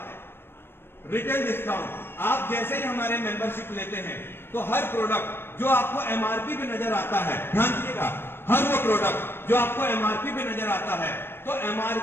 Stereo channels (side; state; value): right; late; 0.11 ms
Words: रिटेल डिस्काउंट, आप जैसे ही हमारे मेंबरशिप लेते हैं तो हर प्रोडक्ट जो आपको MRP पे नजर आता है, ध्यान दीजिएगा, हर वो प्रोडक्ट जो आपको MRP पे नजर आता है, तो